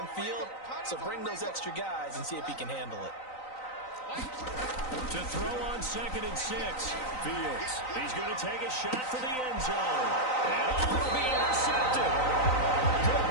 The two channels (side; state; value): right; late; 3.9 ms